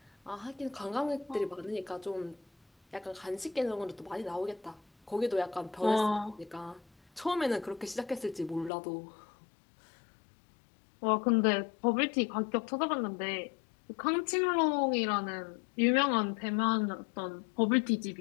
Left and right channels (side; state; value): right; drops out; at 8.7 s